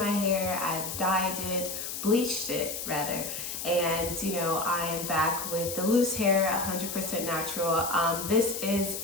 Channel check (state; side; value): noise; left; hiss, 6 dB below the sound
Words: hair, I've dyed it, bleached it rather, and I am back with the loose hair, 100% natural. This is